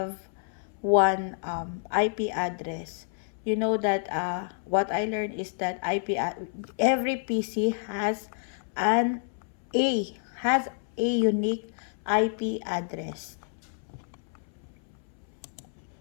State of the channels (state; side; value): silent; right; 59 dB below the other